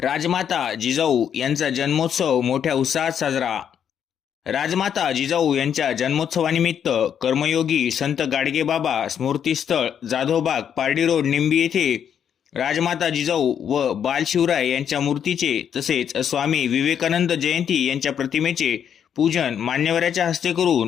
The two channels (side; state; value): right; quieter; 8.5 dB